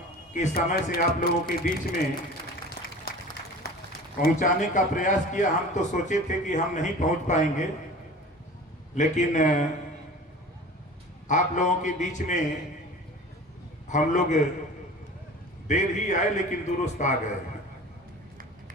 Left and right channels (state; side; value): normal; both; correlation 0.40